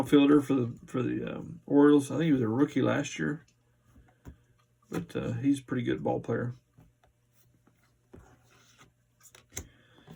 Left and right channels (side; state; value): both; identical; correlation 1.00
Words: for the Orioles. I think he was a rookie last year, but he's a pretty good ball player.